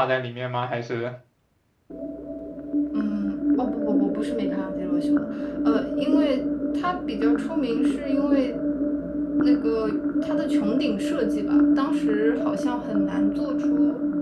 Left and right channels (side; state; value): both; identical; correlation 1.00